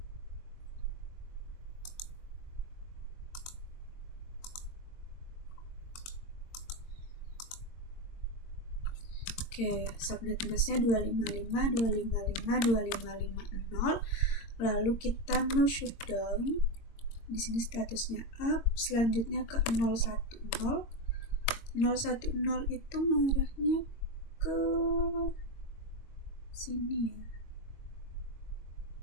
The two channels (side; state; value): right; late; 22 ms